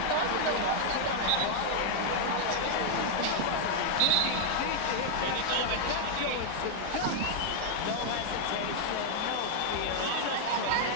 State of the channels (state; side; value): different; both; correlation 0.00